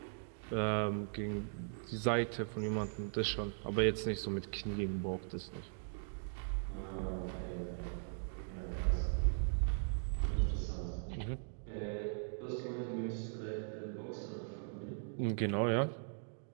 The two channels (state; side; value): silent; left; digital silence